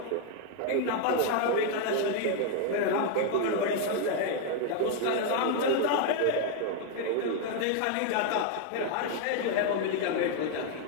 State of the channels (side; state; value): both; different; correlation 0.00